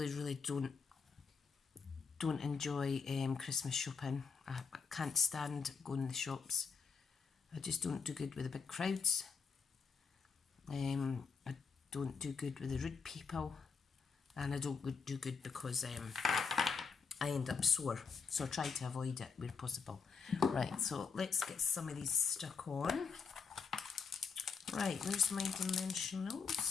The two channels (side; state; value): right; quieter; 5.4 dB